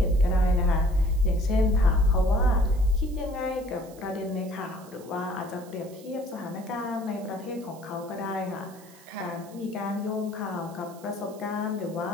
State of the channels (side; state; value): right; noise; hiss, 23 dB below the sound